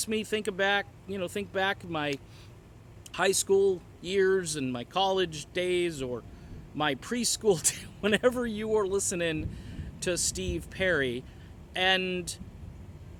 me think back my high school years and my college days, or my preschool whenever you were listening to Steve Perry. And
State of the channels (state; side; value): identical; both; correlation 1.00